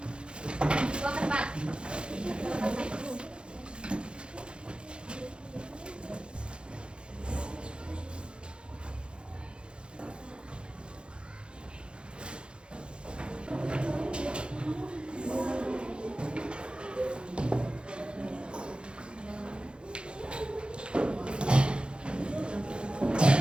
Buang ke depan.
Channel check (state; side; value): late; left; 0.054 ms